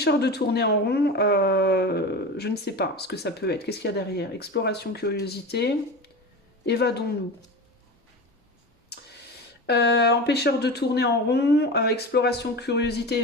de tourner en rond, je ne sais pas ce que ça peut être. Qu'est-ce qu'il y a derrière? Exploration, curiosité. Évadons-nous. Empêcheur de tourner en rond, exploration, curiosité,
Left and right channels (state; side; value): normal; both; correlation 0.28